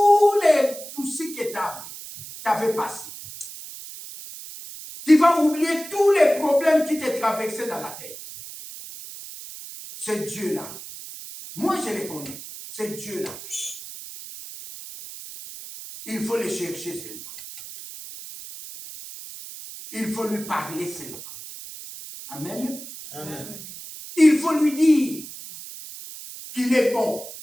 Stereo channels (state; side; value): noise; right; hiss, 13 dB below the sound